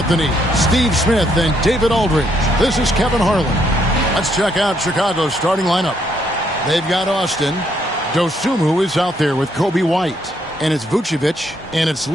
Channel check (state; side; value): normal; both; correlation 0.72